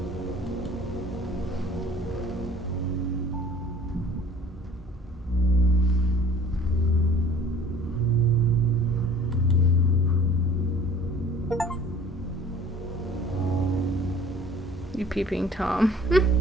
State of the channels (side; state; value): both; normal; correlation 0.50